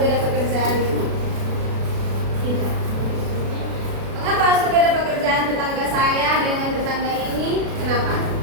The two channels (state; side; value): late; left; 36 ms